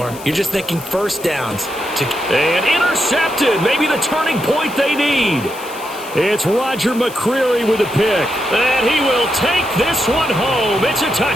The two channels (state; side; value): noise; left; hiss, 17 dB below the sound